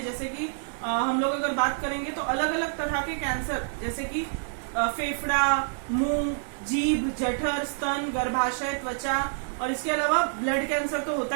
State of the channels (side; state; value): left; silent; 60 dB below the other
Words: जैसे कि हम लोग अगर बात करेंगे तो अलग अलग तरह के कैंसर, जैसे कि फेफड़ा, मुंह, जीभ, जठर, स्तन, गर्भाशय, त्वचा, और इसके अलावा ब्लड कैंसर तो होता